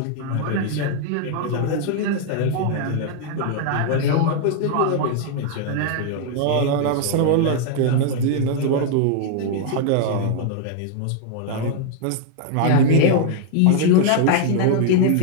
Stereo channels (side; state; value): both; different; correlation 0.00